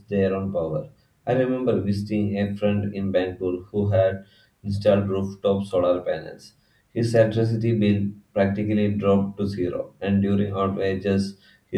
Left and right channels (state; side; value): identical; both; correlation 1.00